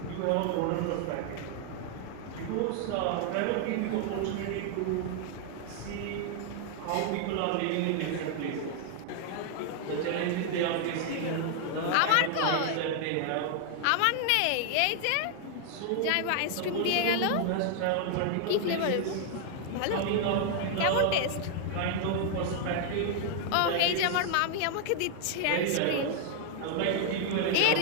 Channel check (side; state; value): both; different; correlation 0.00